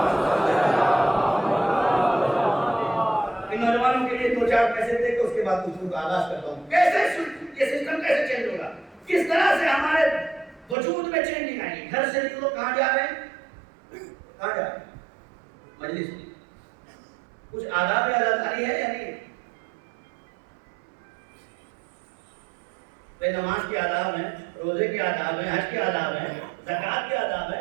ان نوجوانوں کے لیے 2-4 کیسے دے کے اس کے بعد گفتگو کا آغاز کرتا ہوں۔ کیسے یہ سسٹم کیسے چینج ہوگا، کس طرح سے ہمارے وجود میں چینجنگ آئے گی۔ گھر سے نکلو، کہاں جا رہے ہیں؟ کہاں جا رہے ہیں؟ مجلس میں۔ کچھ آداب عزاداری ہے یا نہیں؟ نماز کے آداب ہیں، روزے کے آداب ہیں، حج کے آداب ہیں، زکوٰۃ کے آداب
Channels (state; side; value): drops out; left; at 10.8 s